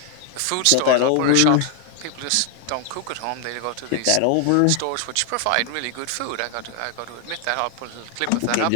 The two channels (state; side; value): different; both; correlation 0.00